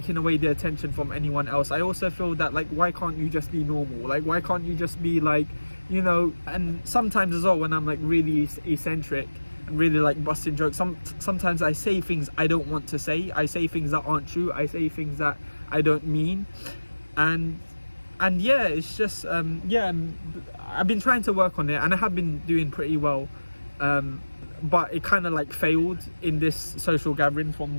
away the attention from anyone else. I also feel that like, why can't you just be normal? Like, why can't you just be like, you know? And sometimes as well, when I'm like really eccentric and really like busting jokes, sometimes I say things I don't want to say. I say things that aren't true. I say things that I don't mean. And yeah, it's just yeah, I've been trying to work on it and I have been doing pretty well. But it kind of like failed in this social gathering from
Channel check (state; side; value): inverted; both; correlation -1.00